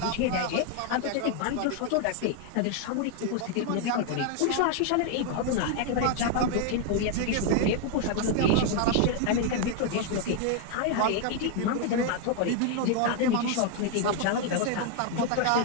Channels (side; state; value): both; different; correlation 0.00